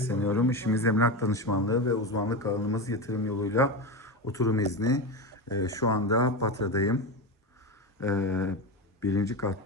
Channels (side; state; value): both; normal; correlation 0.18